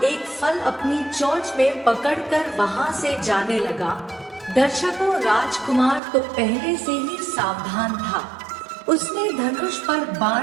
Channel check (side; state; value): left; drops out; at 6.0 s